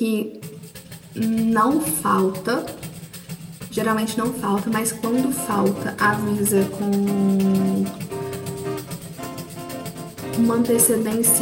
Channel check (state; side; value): identical; both; correlation 1.00